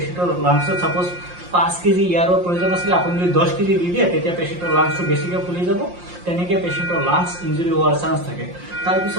লাংছত সাপোজ 5 কেজি এয়াৰৰ প্ৰয়োজন আছিলে, আপুনি যদি 10 কেজি দি দিয়ে তেতিয়া পেচেণ্টৰ লাংছটো বেছিকে ফুলি যাব। তেনেকে পেচেণ্টৰ লাংছ ইঞ্জুৰি হোৱাৰ চান্স থাকে।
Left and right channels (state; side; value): late; left; 5.7 ms